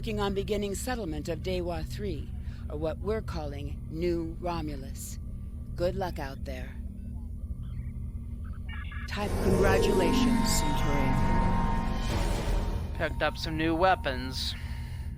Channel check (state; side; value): identical; both; correlation 1.00